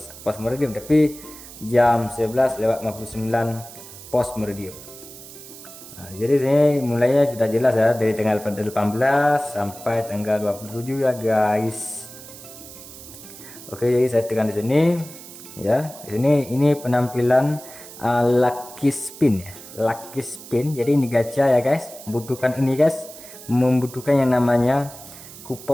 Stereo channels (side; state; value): right; noise; hiss, 16 dB below the sound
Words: post meridium tapi jam 11:59 post meridium. Nah, jadi ini mulainya sudah jelas ya, dari tanggal 18 sampai tanggal 27 ya guys. Oke, jadi saya tekan di sini ya. Di sini ini penampilan lucky spin ya, lucky spin. Jadi ini gacha ya guys, membutuhkan ini guys, membutuhkan yang namanya